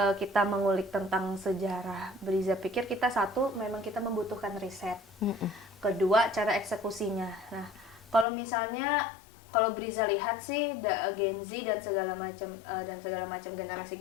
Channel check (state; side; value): drops out; right; at 8.2 s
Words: kita mengulik tentang sejarah. Briza pikir kita satu memang kita membutuhkan riset. Kedua, cara eksekusinya. Nah, kalau Briza lihat sih Gen Z dan segala macam